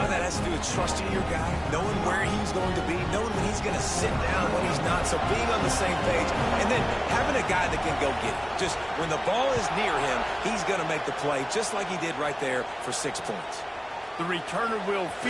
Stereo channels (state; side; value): identical; both; correlation 1.00